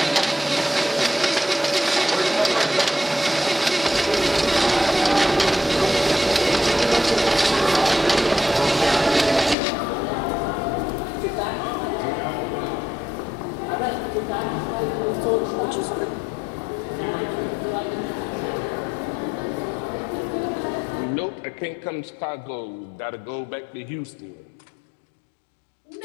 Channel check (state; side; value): drops out; right; at 9.6 s